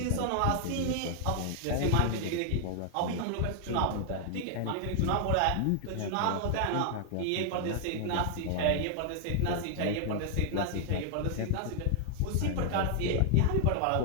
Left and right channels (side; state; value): both; different; correlation 0.00